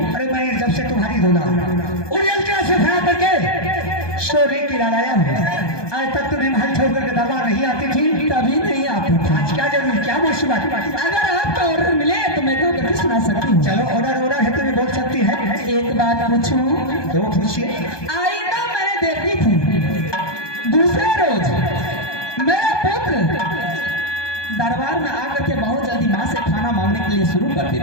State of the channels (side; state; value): right; late; 1.2 ms